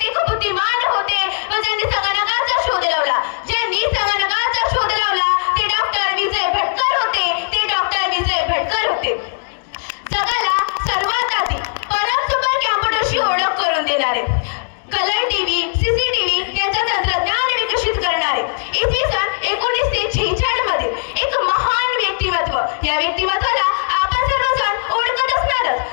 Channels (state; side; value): silent; right; digital silence